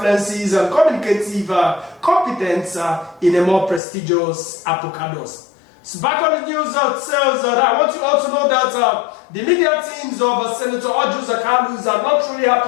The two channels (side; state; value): right; drops out; at 3.8 s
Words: and communicative competence in a more prestigious apocalypse. So back on the news itself, I want you all to know that the media teams of Senator Arochukwu-Ohafia are not truly